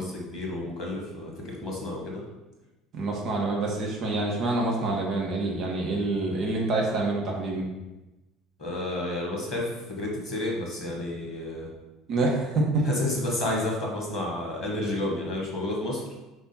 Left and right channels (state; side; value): normal; both; correlation 0.46